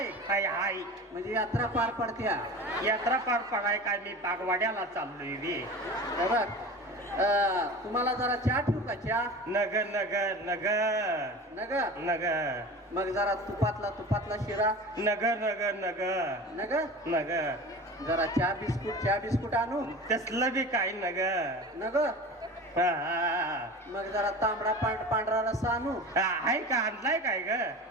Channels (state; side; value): normal; both; correlation 0.34